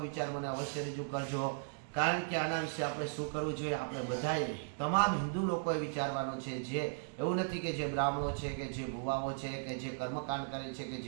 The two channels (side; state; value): left; silent; digital silence